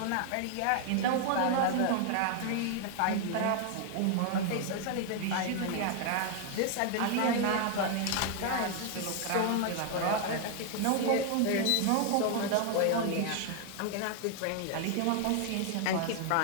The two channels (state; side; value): different; both; correlation 0.00